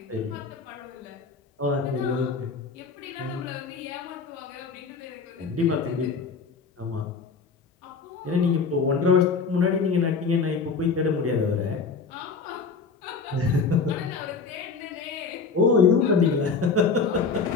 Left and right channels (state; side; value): quieter; right; 4.9 dB